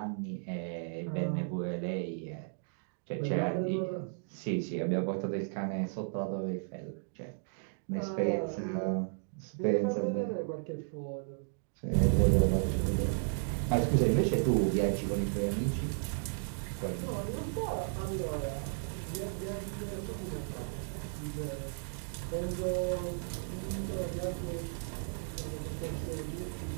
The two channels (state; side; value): silent; left; digital silence